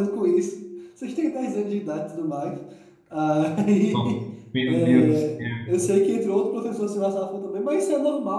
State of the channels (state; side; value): identical; both; correlation 1.00